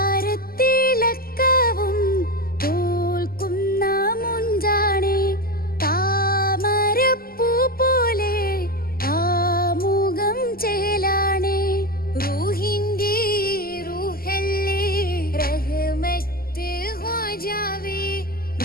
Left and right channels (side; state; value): right; late; 0.43 ms